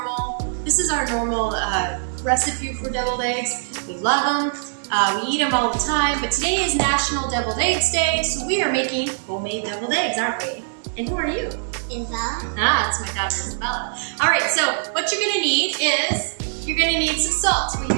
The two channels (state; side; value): silent; left; digital silence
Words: normal recipe for deviled eggs. We love them. We eat them all the time, but today is National Deviled Eggs Day, so we are making homemade deviled eggs, aren't we? And who are you? Isabella. It's my daughter Isabella. All right, so what you're gonna need is, you're gonna need some salt. We